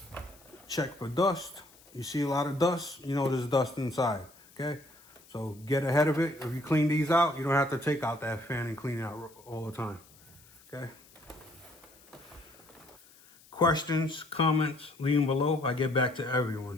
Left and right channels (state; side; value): noise; left; hiss, 26 dB below the sound